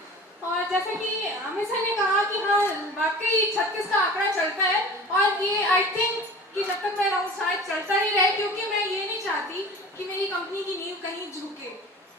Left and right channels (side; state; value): both; normal; correlation 0.39